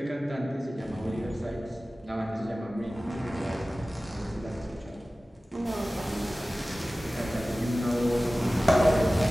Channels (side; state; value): both; normal; correlation 0.97